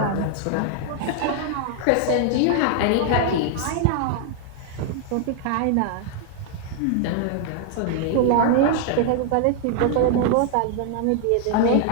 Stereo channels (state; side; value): different; both; correlation -0.01